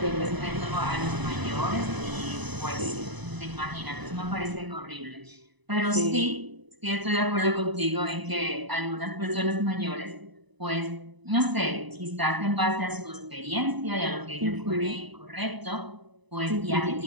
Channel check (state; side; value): late; left; 1.0 ms